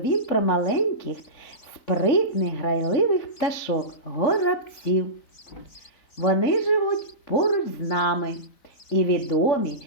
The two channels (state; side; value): late; right; 3.9 ms